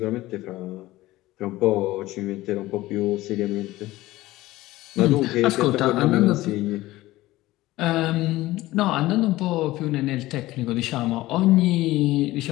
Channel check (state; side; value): quieter; right; 17.5 dB